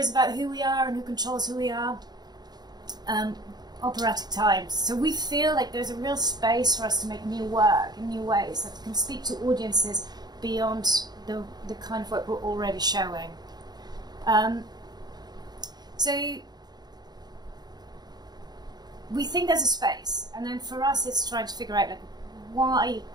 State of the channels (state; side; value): late; left; 0.20 ms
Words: about who we are and who controls who we are. Operatic times. So we feel like there's a real space for us to make new work in new ways that can speak to audiences beyond the kind of work we're already showing. So we think there's a space, and then for us it's trying to figure out like why